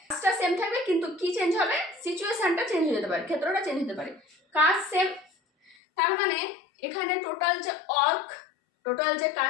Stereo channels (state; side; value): drops out; right; at 5.8 s